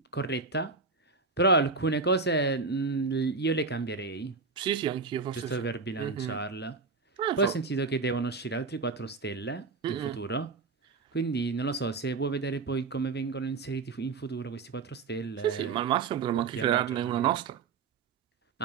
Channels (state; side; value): quieter; left; 4.5 dB